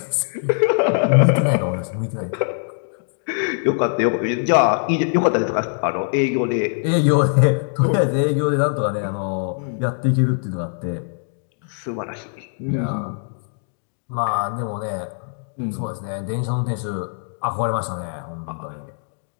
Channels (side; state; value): right; silent; digital silence